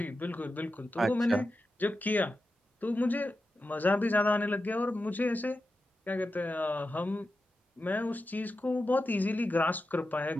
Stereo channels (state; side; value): normal; both; correlation 0.90